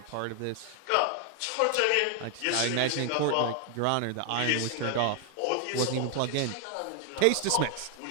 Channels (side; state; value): both; different; correlation 0.00